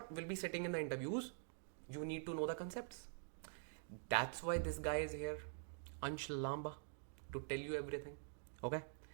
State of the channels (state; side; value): silent; left; digital silence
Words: will be sitting in the interviews, you need to know the concepts. That's why this guy is here, Ansh Lamba, to tell you everything. Okay.